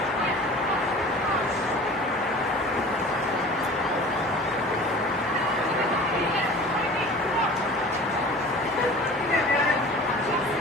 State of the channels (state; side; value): normal; both; correlation 0.41